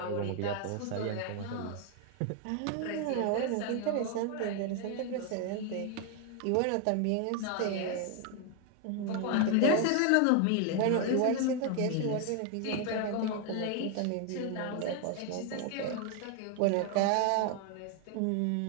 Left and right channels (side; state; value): both; different; correlation 0.01